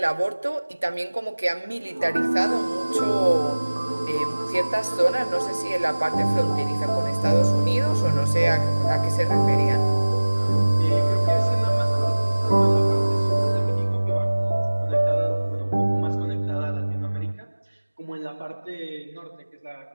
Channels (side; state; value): both; inverted; correlation -1.00